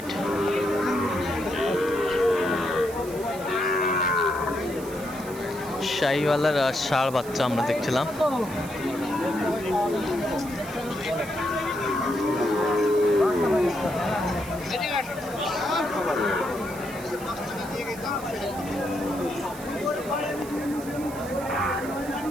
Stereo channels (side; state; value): right; noise; hiss, 16 dB below the sound